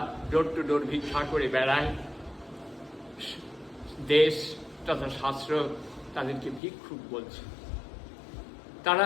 ডোর টু ডোর ভিক্ষা করে বেড়ায়, দেশ তথা শাস্ত্র তাদেরকে ভিক্ষুক বলছে।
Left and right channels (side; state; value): right; drops out; at 6.6 s